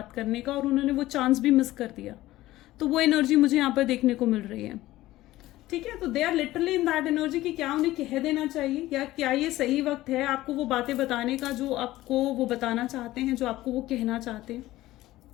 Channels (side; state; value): right; quieter; 16.4 dB